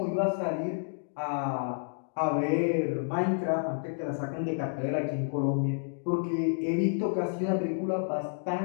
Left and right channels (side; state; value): right; silent; digital silence